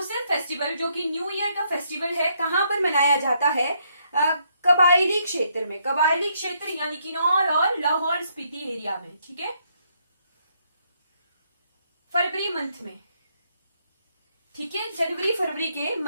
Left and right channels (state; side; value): inverted; both; correlation -0.73